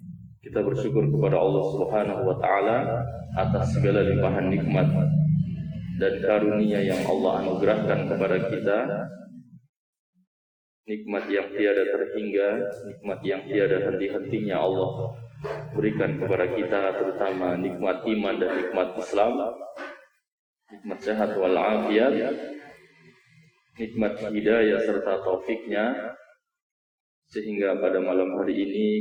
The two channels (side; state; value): both; identical; correlation 1.00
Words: kita bersyukur kepada Allah Subhanahu wa taala atas segala limpahan nikmat dan karunia yang Allah anugerahkan kepada kita. Nikmat yang tiada terhingga, nikmat yang tiada henti-hentinya Allah berikan kepada kita, terutama nikmat iman dan nikmat Islam, nikmat sehat wal afiat, nikmat hidayah serta taufiknya, sehingga pada malam hari